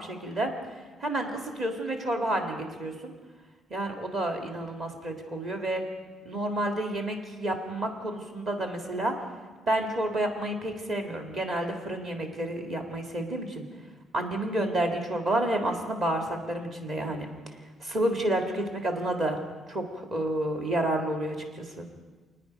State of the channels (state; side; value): normal; both; correlation 0.71